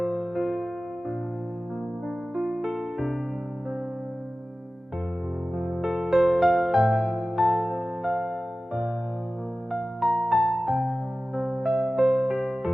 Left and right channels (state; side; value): normal; both; correlation 0.96